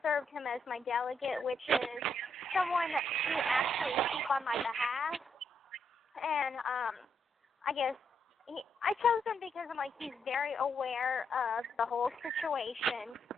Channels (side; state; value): both; normal; correlation 0.78